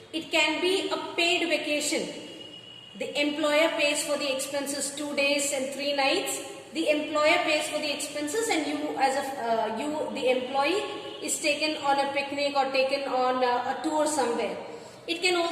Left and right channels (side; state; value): both; identical; correlation 1.00